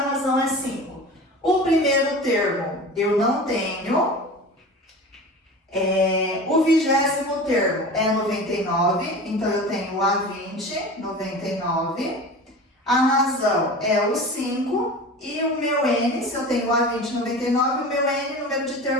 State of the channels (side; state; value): both; normal; correlation 0.34